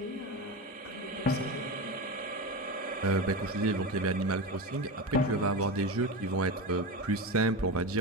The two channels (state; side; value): normal; both; correlation 0.22